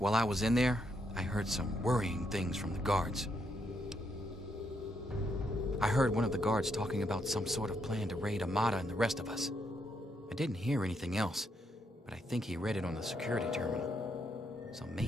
I was in there, I heard some worrying things from the guards. I heard one of the guards talking about some sort of plan to raid Amata and the rest of us. I didn't hear anything else, but I think he read it on the security terminal. So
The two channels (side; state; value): both; normal; correlation 0.77